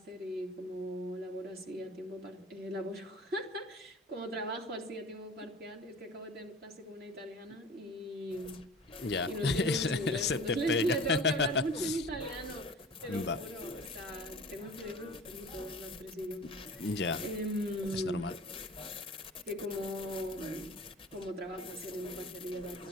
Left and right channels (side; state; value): both; normal; correlation 0.41